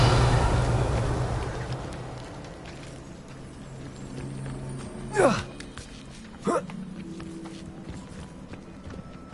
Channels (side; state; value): both; identical; correlation 1.00